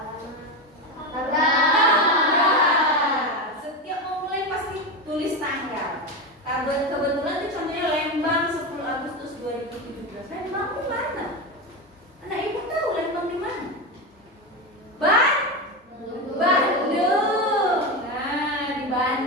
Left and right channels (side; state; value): both; normal; correlation 0.17